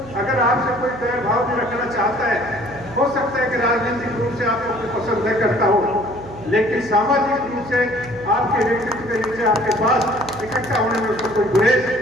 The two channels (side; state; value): right; noise; hum, 17 dB below the sound